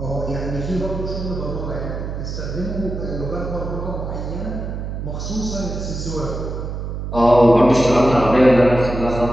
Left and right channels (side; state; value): right; noise; hum, 5 dB below the sound